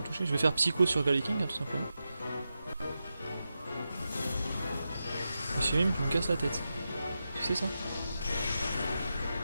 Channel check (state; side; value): inverted; both; correlation -0.90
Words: toucher. Je vais faire Psycho sur Galeking, hein, tout simplement. Monsieur Mime, tu me casses la tête. Tu sais ça?